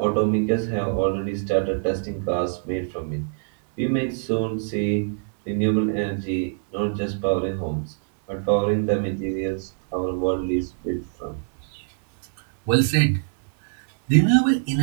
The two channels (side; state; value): left; silent; digital silence